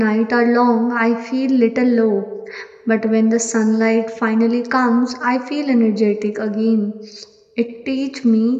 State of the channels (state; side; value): identical; both; correlation 1.00